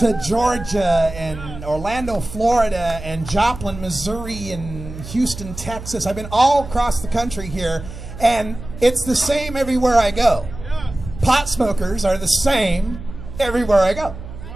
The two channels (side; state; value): right; noise; hum, 12 dB below the sound